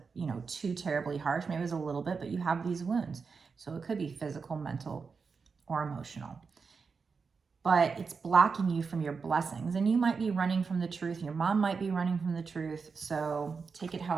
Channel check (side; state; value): left; quieter; 5.1 dB